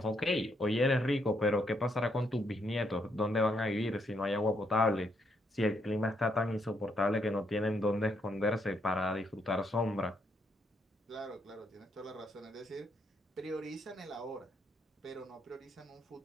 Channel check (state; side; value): normal; both; correlation 0.75